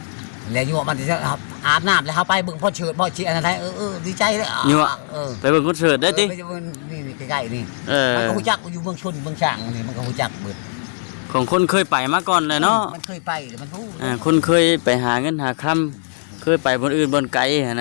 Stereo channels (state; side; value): silent; right; digital silence